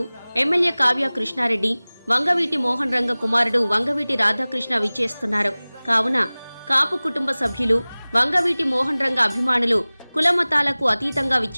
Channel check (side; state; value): both; inverted; correlation -0.99